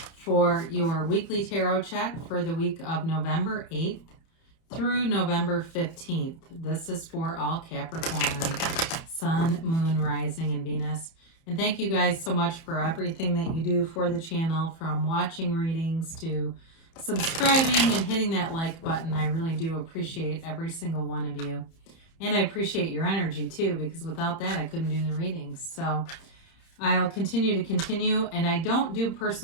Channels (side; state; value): right; late; 30 ms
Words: for your weekly tarot check for the week of November 8th through November 15th. This is for all Capricorn, Sun, Moon, Rising, and Venus. And thank you guys so much for everything that you do for the channel, from watching readings to subscribing and hitting that like button. I really do appreciate every single one of you. And I appreciate your energy too, because without that, I couldn't do the readings. So I'll continue. And I don't do